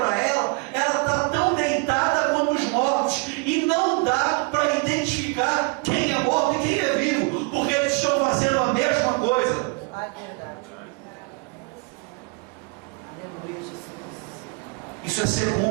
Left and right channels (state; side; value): quieter; left; 31.3 dB